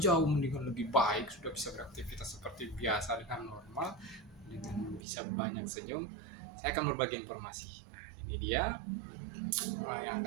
mendingan lebih baik, sudah bisa beraktivitas seperti biasa dengan normal, dengan bisa banyak senyum, saya akan berbagi informasi. Nah, ini dia yang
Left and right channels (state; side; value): drops out; left; at 5.1 s